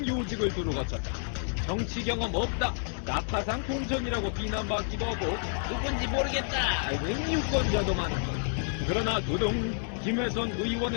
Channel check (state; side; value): silent; right; 58 dB below the other